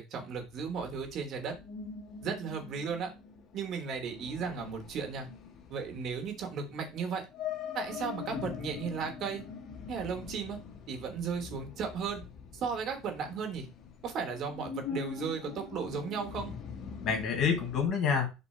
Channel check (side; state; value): both; normal; correlation 0.43